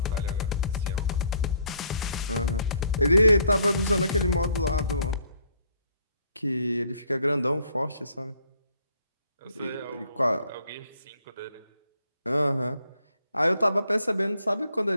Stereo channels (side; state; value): both; inverted; correlation -0.65